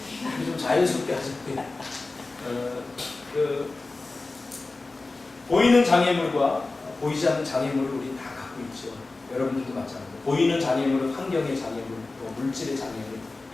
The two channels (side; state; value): right; quieter; 3.4 dB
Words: 좀 자연스럽게 하셨고요. 보이는 장애물과 보이지 않는 장애물을 우리 다 갖고 있죠. 여러분들도 마찬가지로 보이는 장애물은 환경의 장애물, 또 물질의 장애물